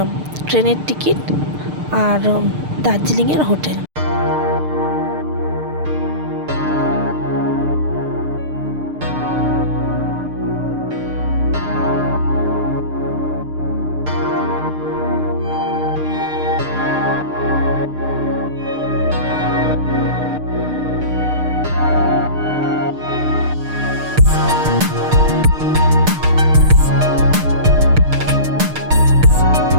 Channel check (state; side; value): late; left; 6.6 ms